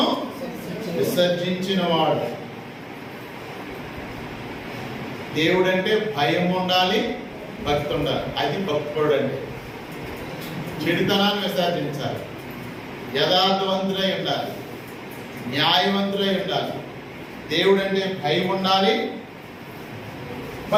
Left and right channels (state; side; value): identical; both; correlation 1.00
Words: విసర్జించిన వాడు. దేవుడంటే భయం ఉండాలి, భక్తి ఉండాలి. అది భక్తుడు అంటే. చెడుతనాన్ని విసర్జించాలి, యథార్థవంతులై ఉండాలి, న్యాయవంతులై ఉండాలి. దేవుడంటే భయం ఉండాలి,